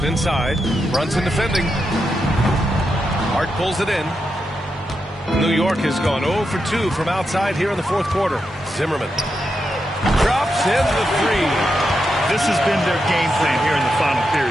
inside. Brunson defending. Hart pulls it in. New York has gone 0 for 2 from outside here in the fourth quarter. Zimmerman drops in the 3. This has been their game plan here in the final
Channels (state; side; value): normal; both; correlation 0.86